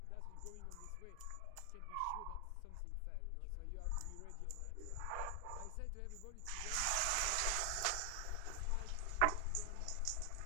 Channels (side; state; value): both; different; correlation 0.00